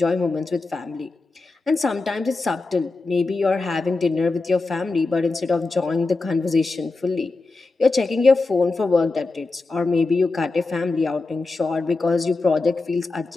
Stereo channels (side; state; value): right; quieter; 3.6 dB